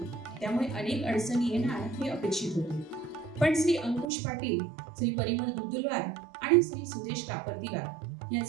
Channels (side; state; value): left; drops out; at 4.0 s